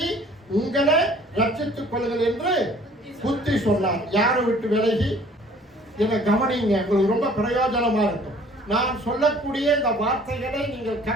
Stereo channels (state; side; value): normal; both; correlation 0.54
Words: உங்களை ரட்சித்துக் கொள்ளுங்கள் என்று புத்தி சொன்னார். யாரை விட்டு விலகி? என்னை கவனிங்க, உங்களுக்கு ரொம்ப பிரயோஜனமா இருக்கும். நான் சொல்லக்கூடிய இந்த வார்த்தைகளை நீங்கள்